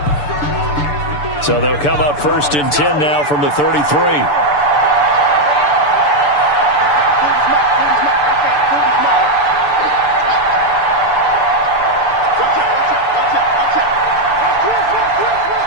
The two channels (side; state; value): right; late; 6.8 ms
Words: So they'll come up 1st and 10 now from the 33.